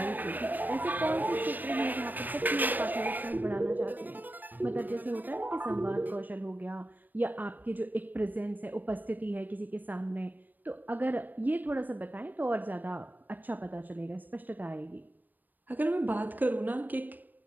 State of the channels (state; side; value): late; left; 0.089 ms